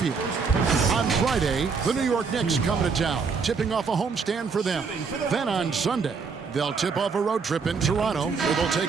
On Friday, the New York Knicks coming to town, tipping off a homestand for them. Then on Sunday, they'll tip off a road trip in Toronto, where they'll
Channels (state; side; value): quieter; left; 5.2 dB